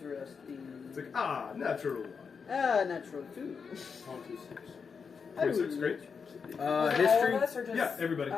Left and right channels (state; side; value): quieter; right; 5.8 dB